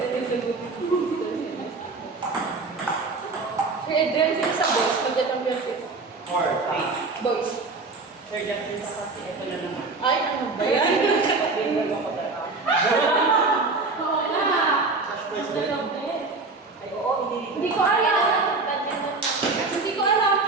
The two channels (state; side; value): quieter; left; 3.8 dB